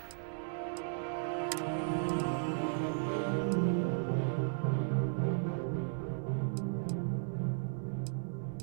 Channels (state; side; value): silent; left; 54 dB below the other